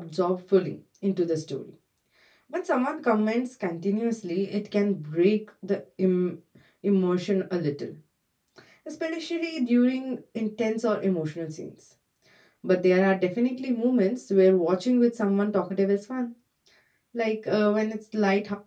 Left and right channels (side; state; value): both; identical; correlation 1.00